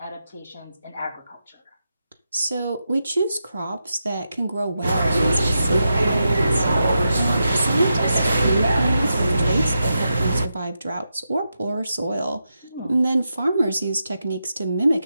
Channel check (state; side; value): inverted; both; correlation -0.87